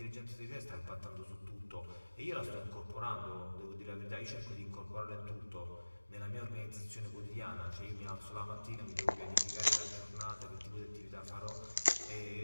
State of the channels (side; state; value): both; inverted; correlation -1.00